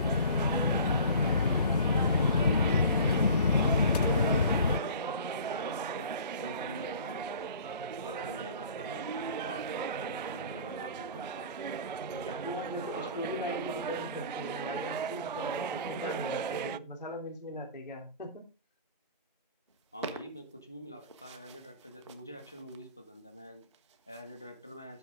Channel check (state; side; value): inverted; both; correlation -0.44